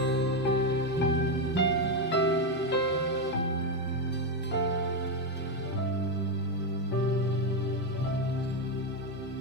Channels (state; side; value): normal; both; correlation 0.08